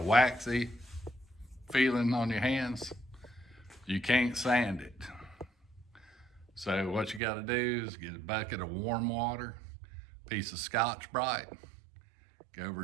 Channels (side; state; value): left; drops out; at 7.2 s